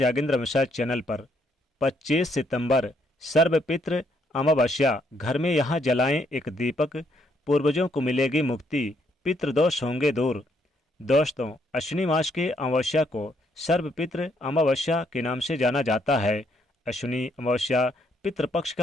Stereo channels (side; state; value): both; normal; correlation 0.72